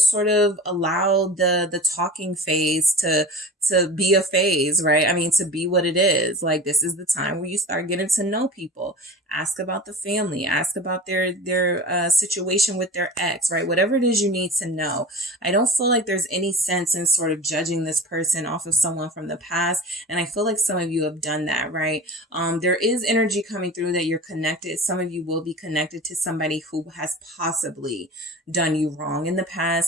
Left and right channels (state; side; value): normal; both; correlation 0.35